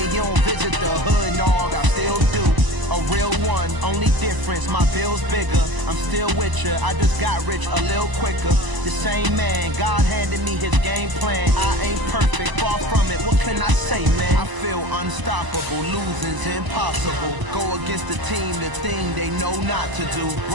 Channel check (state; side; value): late; left; 1.0 ms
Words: you don't visit the hood, dog, I still do. A real one, only difference, my bill's bigger. I'm still with ya, I just got rich a little quicker. The same man, God handed me his game plan. I ain't perfect, far from it, what can I say, man? I feel unstoppable, losing's impossible. Go against the team, the thing they know not to do.